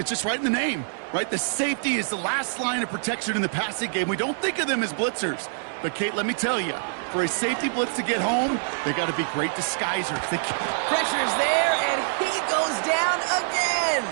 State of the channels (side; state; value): left; silent; 60 dB below the other